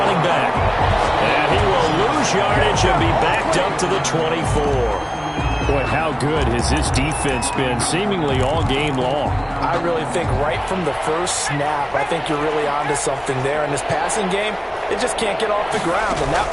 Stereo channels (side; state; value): both; identical; correlation 1.00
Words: back. And he will lose yardage and be backed up to the 24. Boy, how good has this defense been seemingly all game long? I really think right from the first snap, I think you're really onto something there. In this passing game, it just can't get off the ground. And that